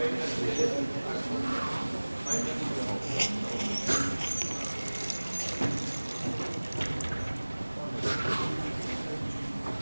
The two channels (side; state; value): both; inverted; correlation -1.00